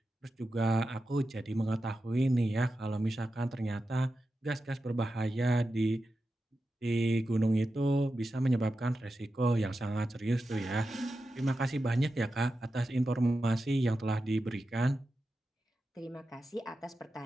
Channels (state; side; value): normal; both; correlation 0.91